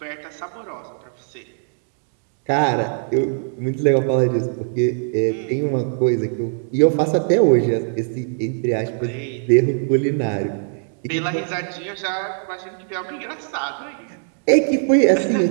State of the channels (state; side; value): silent; left; digital silence